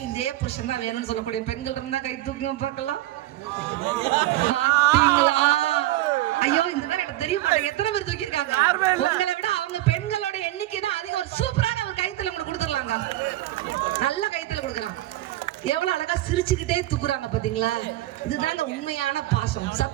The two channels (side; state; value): left; quieter; 16.0 dB